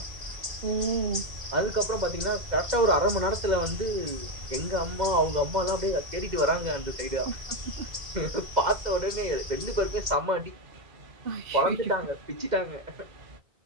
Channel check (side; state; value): left; late; 2.0 ms